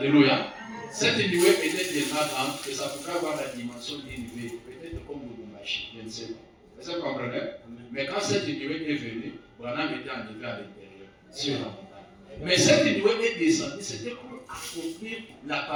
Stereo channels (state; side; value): identical; both; correlation 1.00